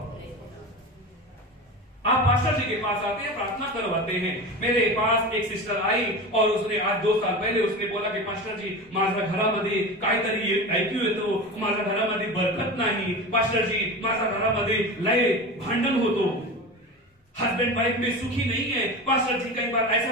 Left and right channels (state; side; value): normal; both; correlation 0.28